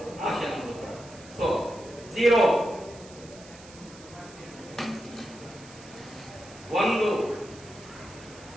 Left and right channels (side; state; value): right; noise; hiss, 20 dB below the sound